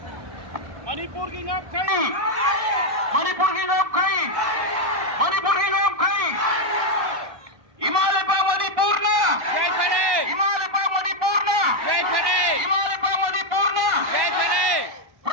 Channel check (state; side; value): late; left; 1.1 ms